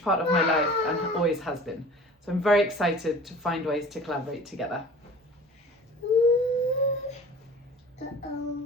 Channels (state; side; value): normal; both; correlation 0.43